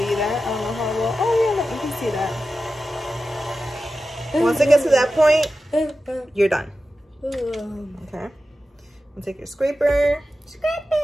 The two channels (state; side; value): normal; both; correlation 0.93